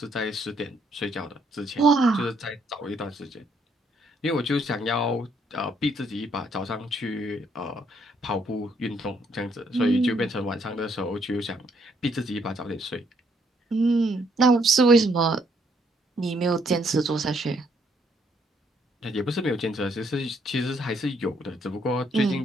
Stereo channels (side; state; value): both; normal; correlation 0.70